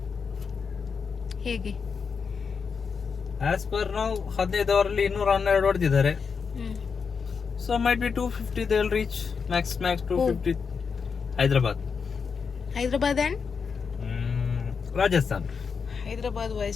ಹೇಗೆ ಆಸ್ ಪರ್ ನಾವು 15 ಓವರಲ್ಲಿ 212 ಹೊಡೆದಿದ್ದಾರೆ. So might be 250 they will reach max 250. Hyderabad and Rajasthan. Hyderabad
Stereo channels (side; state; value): right; quieter; 5.8 dB